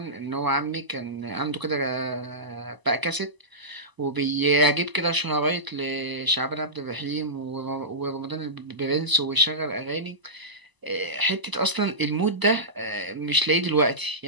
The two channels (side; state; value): left; late; 1.0 ms